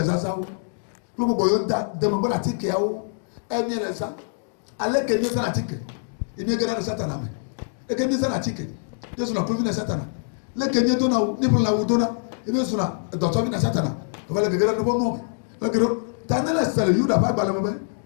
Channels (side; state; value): right; silent; digital silence